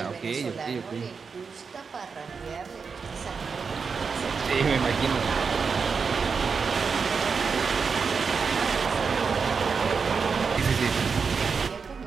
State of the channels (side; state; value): left; quieter; 5.4 dB